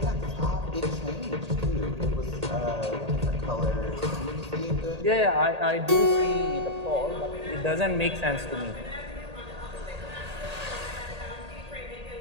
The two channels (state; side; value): late; left; 1.8 ms